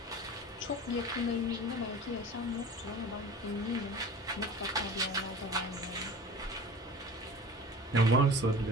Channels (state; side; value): normal; both; correlation 0.39